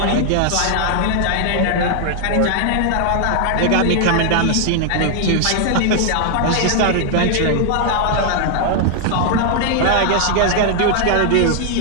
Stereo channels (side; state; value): both; different; correlation 0.00